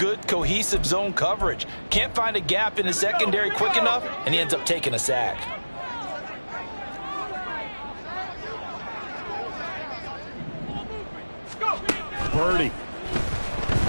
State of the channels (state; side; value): inverted; both; correlation -1.00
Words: cohesive zone coverage. Can't find a gap in the secondary quick enough, and he ends up taking a sack. Purdy.